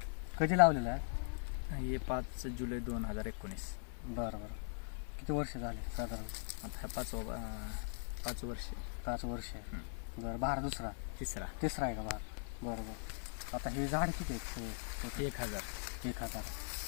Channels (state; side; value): silent; right; 51 dB below the other